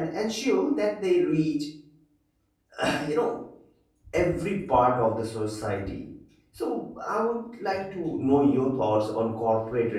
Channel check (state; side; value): identical; both; correlation 1.00